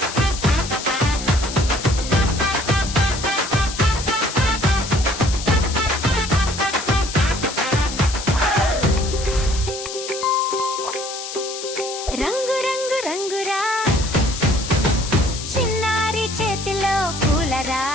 రంగు రంగు రంగురా చిన్నారి చేతిలో పూలరా,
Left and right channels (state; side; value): noise; left; hiss, 8 dB below the sound